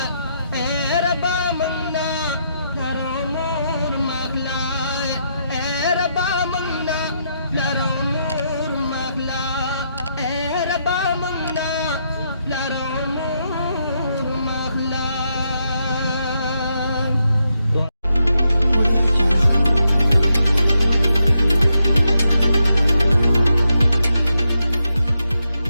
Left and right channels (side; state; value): both; inverted; correlation -0.81